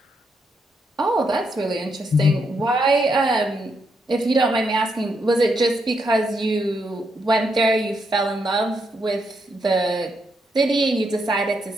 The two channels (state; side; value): normal; both; correlation 0.79